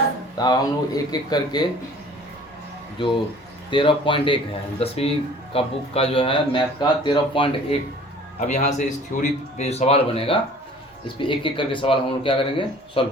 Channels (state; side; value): normal; both; correlation 0.49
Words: तो अब हम लोग एक एक करके जो 13.1 है 10वीं का बुक का जो है मैथ का 13.1, अब यहाँ से इस थ्योरी पे जो सवाल बनेगा इस पे एक एक करके सवाल हम लोग क्या करेंगे, सॉल्व